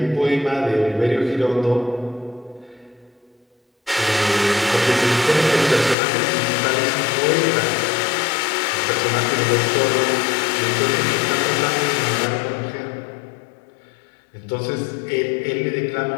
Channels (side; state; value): right; drops out; at 6.0 s